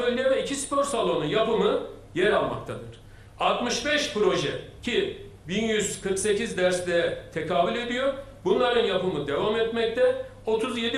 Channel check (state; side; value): identical; both; correlation 1.00